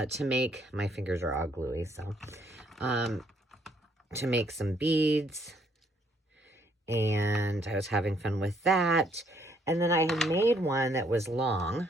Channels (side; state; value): both; normal; correlation 0.68